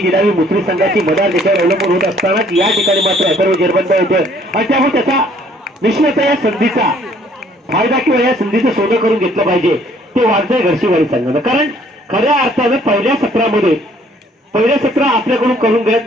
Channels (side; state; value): both; normal; correlation 0.61